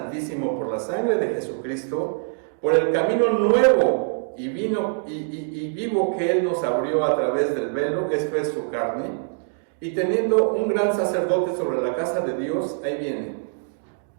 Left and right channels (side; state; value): left; silent; digital silence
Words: por la sangre de Jesucristo, por el camino nuevo y vivo que Él nos abrió a través del velo, esto es su carne, y teniendo un gran sacerdote sobre la casa de Dios, ahí viene,